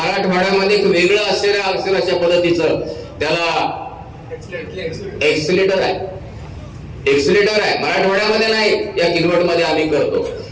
एक वेगळं असेल अशा पद्धतीचं त्याला एक्सिलेटर आहे. मराठवाड्यामध्ये नाही, या किनवटमध्ये आम्ही करतो.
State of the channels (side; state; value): both; identical; correlation 1.00